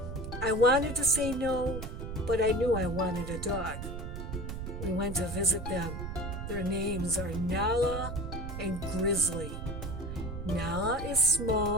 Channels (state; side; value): noise; right; rumble, 6 dB below the sound